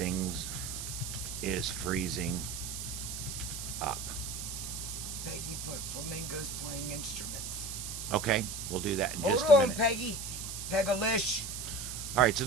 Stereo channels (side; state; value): right; noise; hiss, 6 dB below the sound